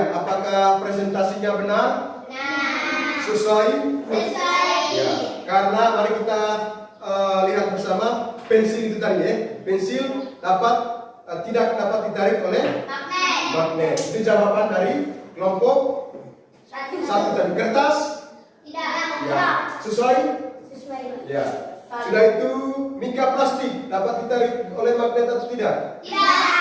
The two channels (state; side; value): identical; both; correlation 1.00